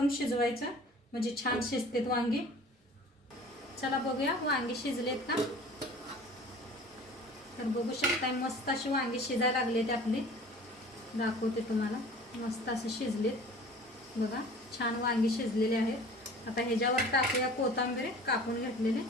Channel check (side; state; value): both; normal; correlation 0.45